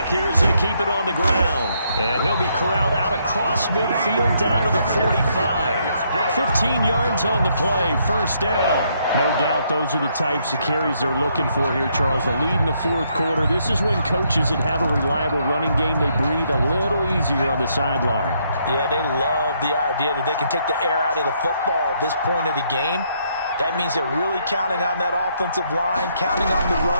here as they keep it on the ground. And he'll be corralled out across midfield down to the 45. 15 yards on the play, first down. No doubt those are the types of carries they're looking for here, Charles. The lead in the fourth quarter. This is when coaches that have a reliable running game, they breathe a little easier on the sideline. Yeah, they love the idea that they can take the air out of the football at this point of the game. That means they're really counting on that offensive line, counting on the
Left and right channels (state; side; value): inverted; both; correlation -0.73